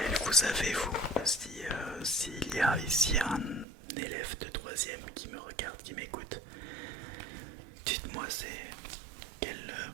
vous avez vous. S'il y a ici un élève de 3ème qui me regarde, qui m'écoute, dites-moi c'est quel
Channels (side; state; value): left; drops out; at 3.7 s